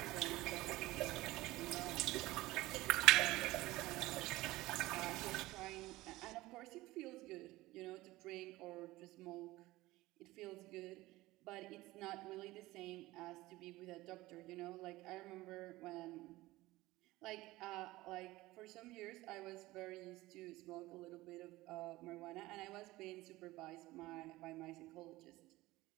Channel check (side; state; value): left; quieter; 18.6 dB